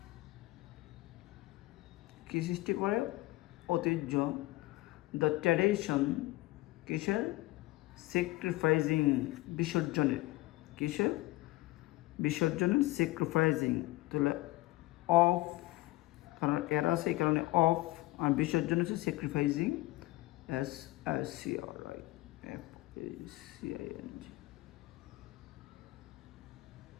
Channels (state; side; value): quieter; right; 19.4 dB